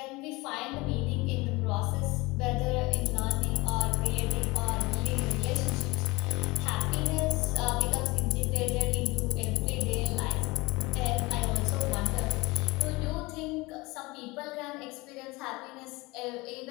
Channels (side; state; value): right; quieter; 23.2 dB